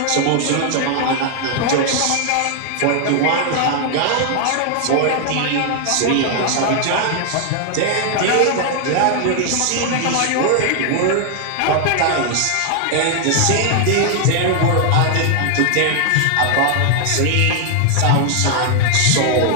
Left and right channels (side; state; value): both; different; correlation 0.00